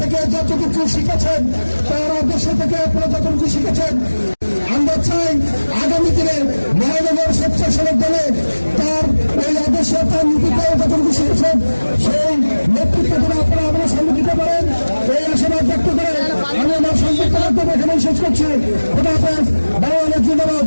যতটুকু শিখেছেন, তার আদর্শ থেকে আপনারা যতটুকু শিখেছেন, আমরা চাই আগামী দিনে মহানগর স্বেচ্ছাসেবক দলে তার ওই আদর্শ, তার নীতিটাও যতটুকু শিখেছেন, সেই নেতৃত্ব করে আপনারা আমাদের সামনে দিতে পারেন। এই আশাবাদ ব্যক্ত করে আমি আমার সংযুক্ত বক্তব্য এখানে শেষ করছি। খোদা হাফেজ। বাংলাদেশ জিন্দাবাদ।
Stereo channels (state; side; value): inverted; both; correlation -1.00